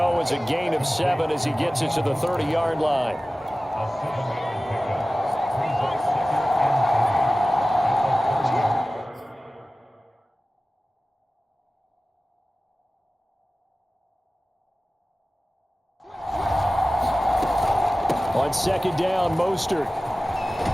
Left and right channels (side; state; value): both; normal; correlation 0.96